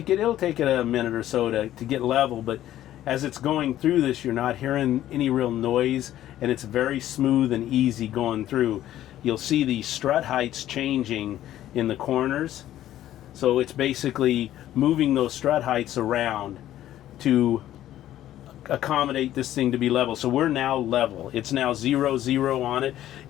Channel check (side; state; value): right; quieter; 12.9 dB